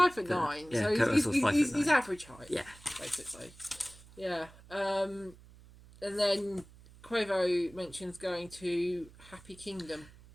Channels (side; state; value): right; noise; hum, 22 dB below the sound